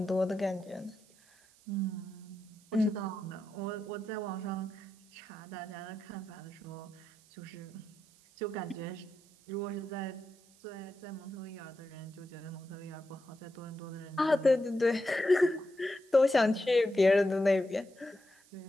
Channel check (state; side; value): noise; right; hiss, 28 dB below the sound